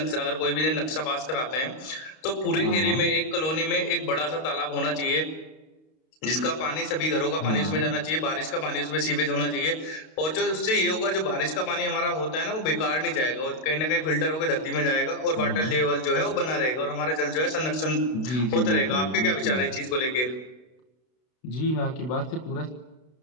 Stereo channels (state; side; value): late; right; 32 ms